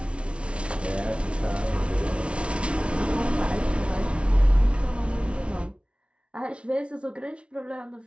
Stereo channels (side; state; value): left; late; 0.059 ms